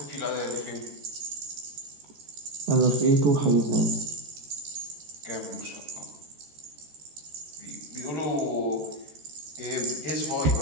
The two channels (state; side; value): late; left; 13 ms